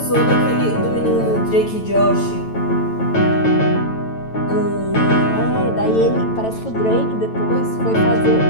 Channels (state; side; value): late; right; 9.0 ms